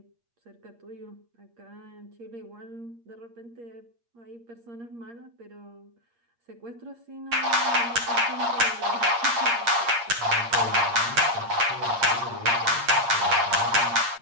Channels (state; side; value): late; left; 8.6 ms